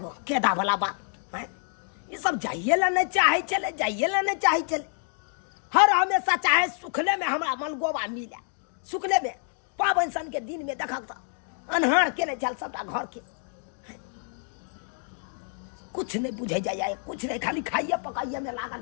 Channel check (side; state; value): right; silent; 56 dB below the other